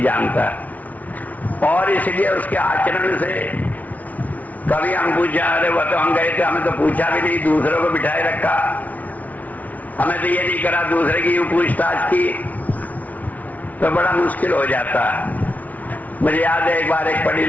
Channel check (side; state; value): right; late; 0.073 ms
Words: जानता है। और इसलिए उसके आचरण से कभी हम पूछा, अरे वो तो हम गए थे, हमें तो पूछा भी नहीं, दूसरों को बिठाए रखा, हमें तो ये नहीं करा, दूसरे की यूं पूछताछ की, तो बड़ा मुश्किल हो जाता है। मुझे याद है एक बार एक पढ़ी